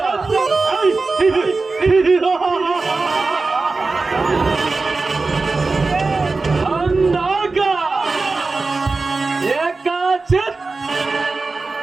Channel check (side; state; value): left; quieter; 3.8 dB